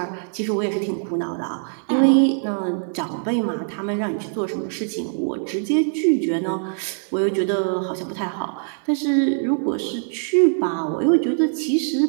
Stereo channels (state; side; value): silent; left; 64 dB below the other